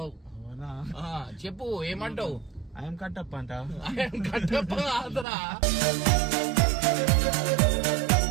చెప్పు ఏమంటావు? ఐఎమ్ కట్టప్ప అంట. కట్టప్ప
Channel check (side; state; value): left; drops out; at 5.2 s